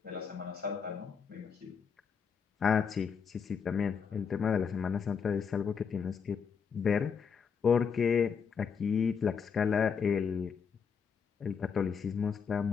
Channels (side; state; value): right; quieter; 6.4 dB